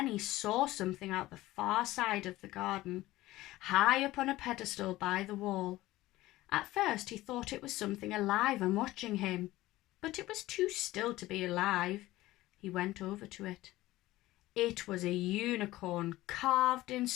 saw something out the far side of the garden, high up on a pedestal by the wall. At first he thought it was something alive and watching him, but it was too still to be alive. He went over to it. It was a unicorn carved in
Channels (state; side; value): quieter; right; 17.2 dB